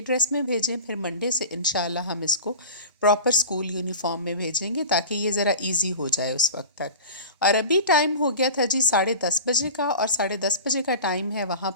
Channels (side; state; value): both; inverted; correlation -0.35